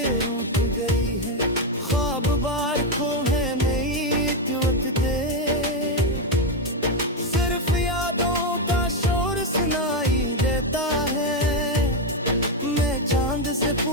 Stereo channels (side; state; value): both; normal; correlation 0.06